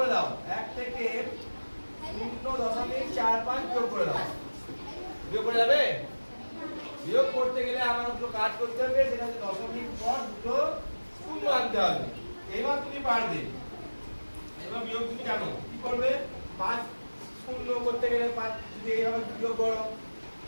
দাও, 1 থেকে 0.45 বিয়োগ করে দাও, বিয়োগ করে যাবে, বিয়োগ করতে গেলে আমার দুটো কাজ করতে হবে, সেটা হচ্ছে দশমিক পর দুটো শূন্য আনতে হবে, এবার তুমি পারবে, এবার বিয়োগ তুমি জানো কি করবে, 5 শূন্য করতে গেলে 5 যদি এইভাবে বিয়োগ করো,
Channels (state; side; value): inverted; both; correlation -1.00